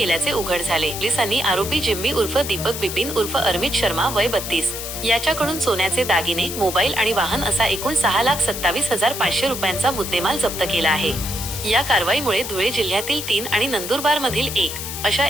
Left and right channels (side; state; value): left; noise; hiss, 7 dB below the sound